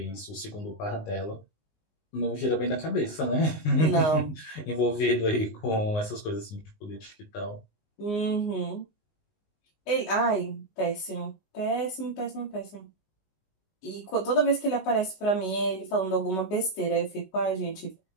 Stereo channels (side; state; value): right; late; 19 ms